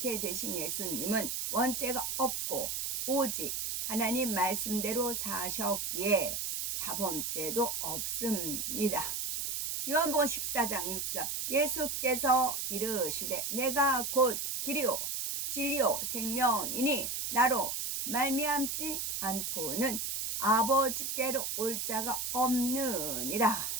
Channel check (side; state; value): right; noise; hiss, 2 dB below the sound